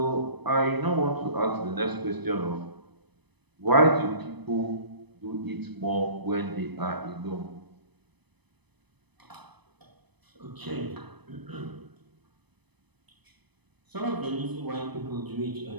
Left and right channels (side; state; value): left; late; 0.99 ms